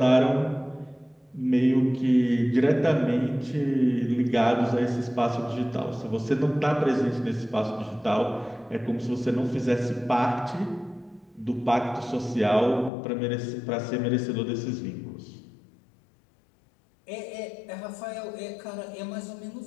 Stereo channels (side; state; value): right; drops out; at 12.9 s